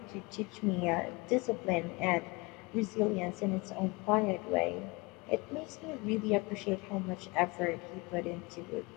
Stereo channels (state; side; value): quieter; right; 25.7 dB